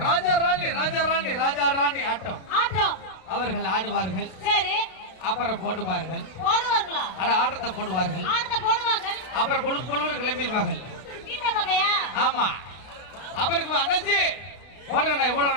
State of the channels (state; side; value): late; right; 32 ms